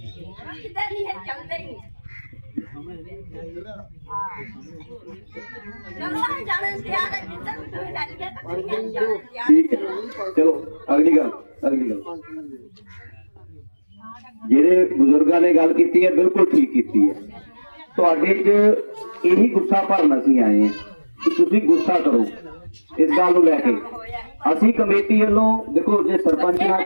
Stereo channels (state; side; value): inverted; both; correlation -1.00